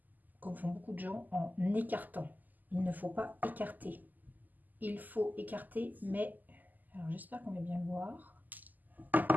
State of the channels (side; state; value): left; late; 0.084 ms